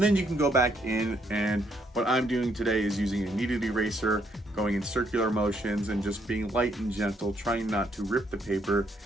then you can go back in, and what I'm doing today is using a kneaded eraser, going in circular motions and just being light and gentle, trying not to rip the paper.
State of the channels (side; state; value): both; normal; correlation 0.72